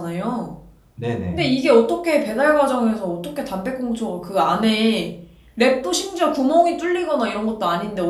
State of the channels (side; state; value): both; identical; correlation 1.00